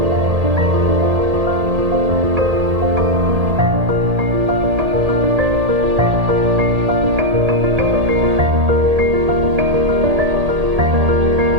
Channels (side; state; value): left; late; 1.8 ms